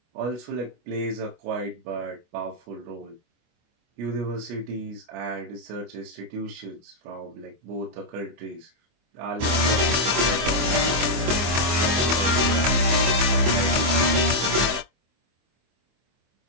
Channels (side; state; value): left; late; 24 ms